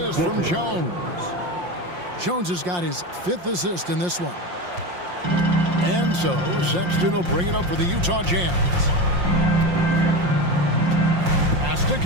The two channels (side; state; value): left; late; 5.7 ms